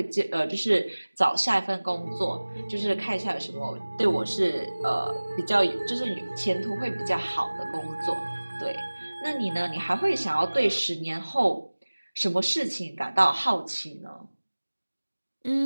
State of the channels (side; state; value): both; inverted; correlation -1.00